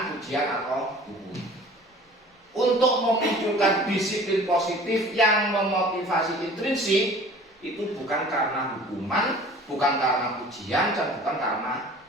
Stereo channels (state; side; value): normal; both; correlation 0.46